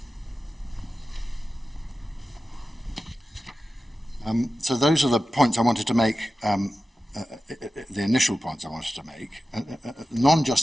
So those are the points I wanted to make, the initial points I wanted to make.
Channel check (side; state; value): both; normal; correlation 0.94